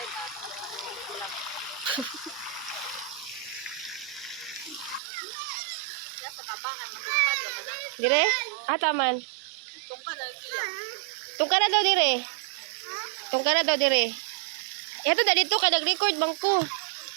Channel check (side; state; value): left; drops out; at 5.0 s